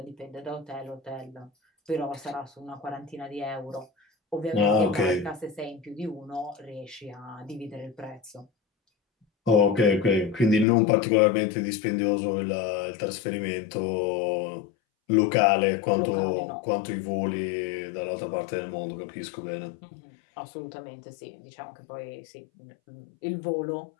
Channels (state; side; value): drops out; right; at 10.7 s